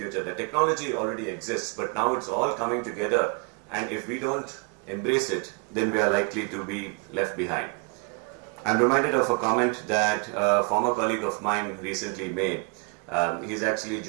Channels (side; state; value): left; quieter; 35.0 dB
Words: The technology already exists, but now it's all coming together, and if we don't embrace it, then we are likely to be left behind. I'm reminded of a comment that a former colleague of mine recently made. He's actually